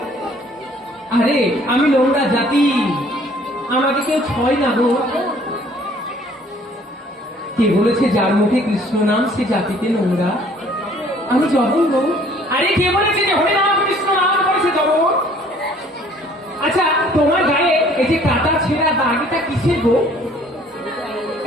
আরে আমি নোংরা জাতি, আমাকে কেউ ছয় না গো। কে বলেছে যার মুখে কৃষ্ণ নাম সে জাতিতে নোংরা? আমি জঘন্য। আরে কে বলেছে যে হরে নাম কৃষ্ণ নাম করেছে জঘন্য? আচ্ছা তোমার গায়ে এই যে কাটা ছেঁড়া দাগ, এটা কিসের গো?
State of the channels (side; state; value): both; normal; correlation 0.57